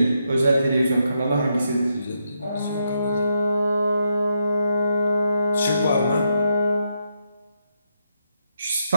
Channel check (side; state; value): both; inverted; correlation -0.81